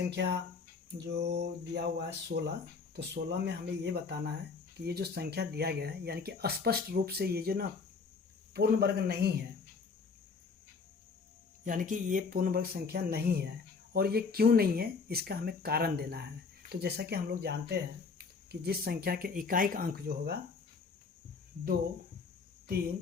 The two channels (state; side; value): quieter; right; 4.9 dB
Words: जो दिया हुआ है 16, तो 16 में हमें ये बताना है कि ये जो संख्या दिया गया है, यानी कि स्पष्ट रूप से ये जो ना पूर्ण वर्ग नहीं है, यानी कि ये पूर्ण वर्ग संख्या नहीं है। और ये क्यों नहीं है, इसका हमें कारण देना है। तो जैसा कि हम लोग जानते हैं कि जिस संख्या के इकाई का अंक जो होगा 2